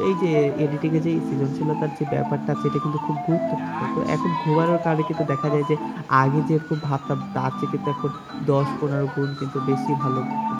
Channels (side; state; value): both; identical; correlation 1.00